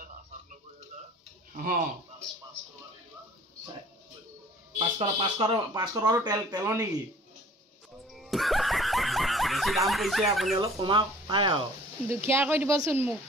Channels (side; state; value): both; normal; correlation 0.50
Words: 500 টকাটো তেলৰ নেকি বেছি দাম কৈছে আপুনি অলপ কমা পায় আৰু দুখীয়া কৰি দিবচোন